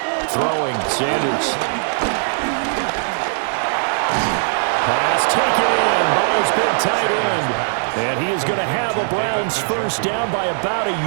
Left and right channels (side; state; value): left; silent; digital silence